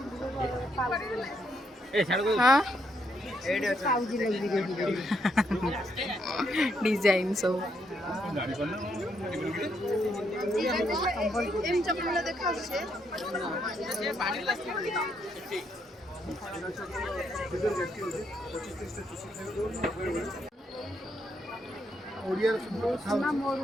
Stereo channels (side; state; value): both; normal; correlation 0.76